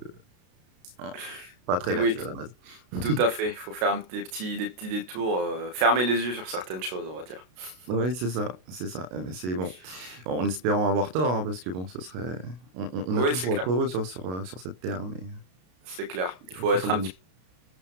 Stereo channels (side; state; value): left; late; 33 ms